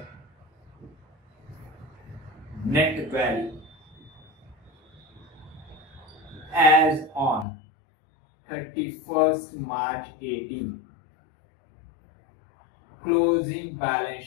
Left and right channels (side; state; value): right; drops out; at 7.5 s